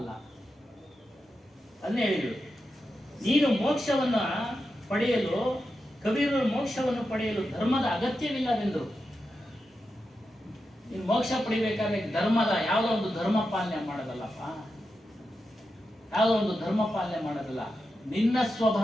ಅದನ್ನೇ ಹೇಳಿದ್ರು, ನೀನು ಮೋಕ್ಷವನ್ನ ಪಡೆಯಲು, ಕಬೀರರು ಮೋಕ್ಷವನ್ನು ಪಡೆಯಲು ಧರ್ಮದ ಅಗತ್ಯವಿಲ್ಲವೆಂದರು. ನೀನು ಮೋಕ್ಷ ಪಡಿಬೇಕಾದ್ರೆ ಧರ್ಮದ ಯಾವುದೋ ಒಂದು ಧರ್ಮ ಪಾಲನೆ ಮಾಡೋದಲ್ಲಪ್ಪ, ಯಾವುದೋ ಒಂದು ಧರ್ಮ ಪಾಲನೆ ಮಾಡೋದಲ್ಲ. ನಿನ್ನ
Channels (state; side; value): normal; both; correlation 0.89